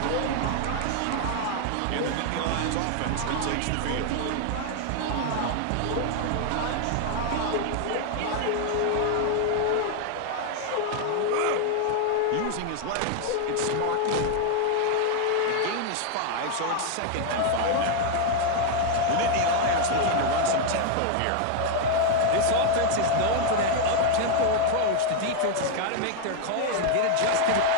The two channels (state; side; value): different; both; correlation 0.00